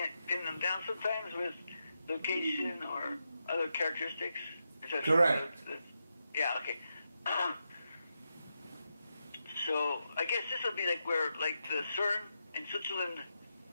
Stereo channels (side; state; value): both; inverted; correlation -0.86